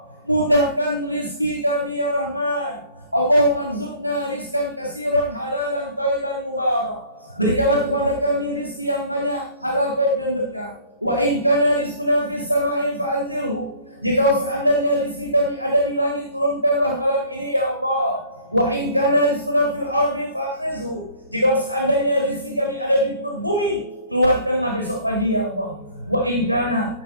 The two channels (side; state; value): both; inverted; correlation -0.53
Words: Mudahkan rizki kami ya Rahman. Allahumma rzuqna rizkan kasiran halalan thayyiban mubarak. Berikanlah kepada kami rizki yang banyak, halal, baik dan berkah. Wa in kana rizquna fis sama'i fa'anzilhu. Jika seandainya rizki kami ada di langit, turunkanlah malam ini ya Allah. Wa in kana rizquna fil ardi fa'khrizhu. Jika seandainya rizki kami ada di perut bumi, keluarkanlah besok pagi ya Allah. Wa in